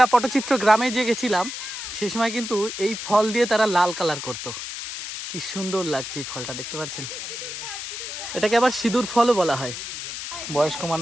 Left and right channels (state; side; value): noise; left; hiss, 7 dB below the sound